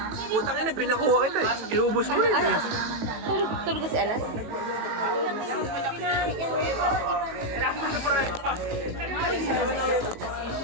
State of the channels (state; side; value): late; left; 19 ms